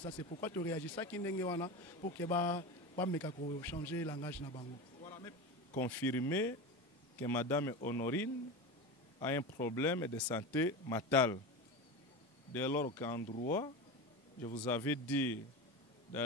C'est pourquoi tu réagis ça qui n'est pas pour que pas changer le langage na bango. Confirmer que Madame Honorine a un problème de santé mentale. Dès lors qu'en droit, je vous avais dit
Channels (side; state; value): both; normal; correlation 0.24